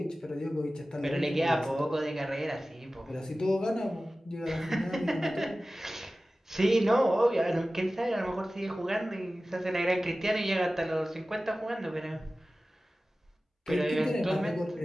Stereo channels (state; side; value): normal; both; correlation 0.96